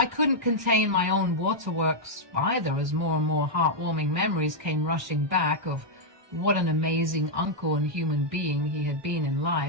couldn't contain my own waterworks either, as more and more heartwarming memories came rushing back of what an amazing uncle and human being he had been in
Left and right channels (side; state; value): left; late; 1.1 ms